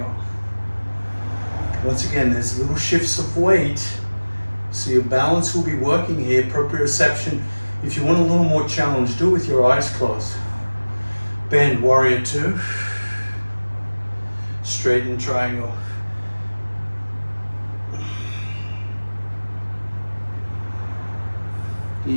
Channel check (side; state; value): both; inverted; correlation -1.00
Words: Once again, there's little shifts of weight. So your balance will be working here, proprioception If you want a little more challenge, do it with your eyes closed. Bend, warrior two. Straighten, triangle.